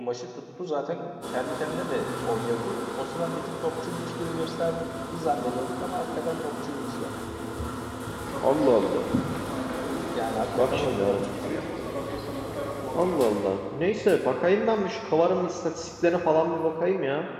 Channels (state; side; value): identical; both; correlation 1.00